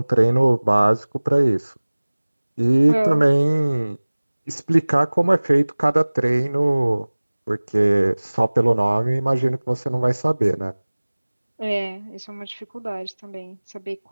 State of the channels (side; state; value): both; inverted; correlation -1.00